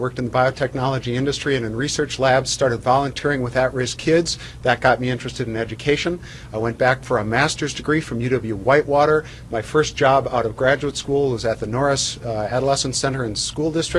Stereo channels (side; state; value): both; identical; correlation 1.00